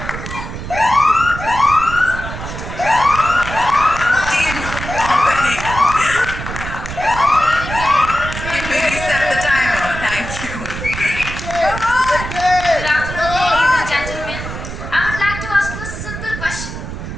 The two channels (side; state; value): right; noise; rumble, 8 dB below the sound